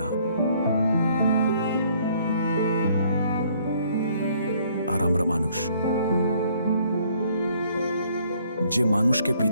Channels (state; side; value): inverted; both; correlation -0.63